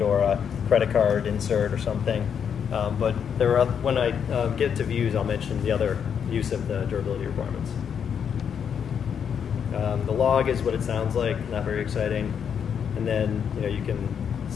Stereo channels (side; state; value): right; quieter; 7.6 dB